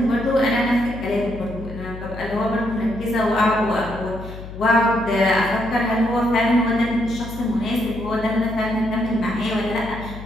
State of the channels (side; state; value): left; noise; hum, 12 dB below the sound